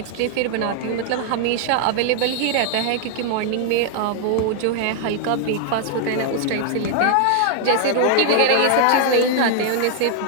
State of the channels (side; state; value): both; different; correlation 0.00